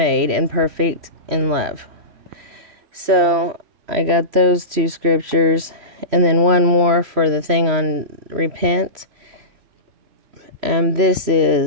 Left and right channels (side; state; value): left; late; 3.1 ms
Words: perfect in love. So I got those two scriptures, and then one more for the thing on repent. This